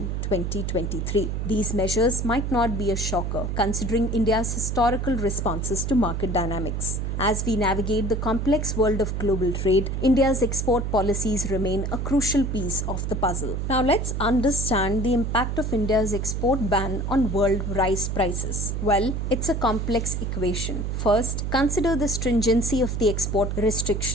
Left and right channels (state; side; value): noise; right; hum, 2 dB below the sound